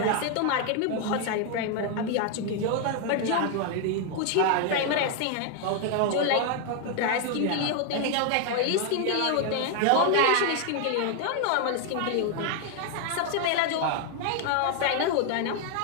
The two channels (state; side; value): different; both; correlation 0.00